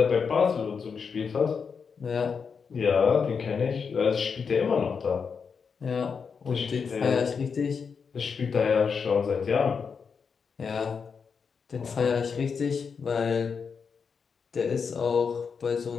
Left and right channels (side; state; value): right; quieter; 5.9 dB